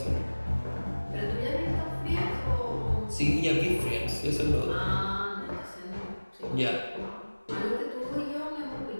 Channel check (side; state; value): both; inverted; correlation -1.00